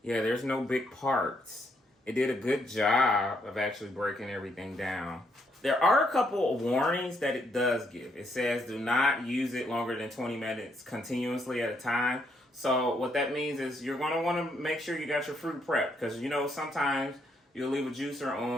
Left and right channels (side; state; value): both; normal; correlation 0.74